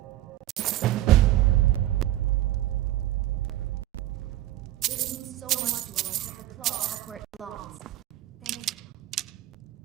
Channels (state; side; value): quieter; left; 14.3 dB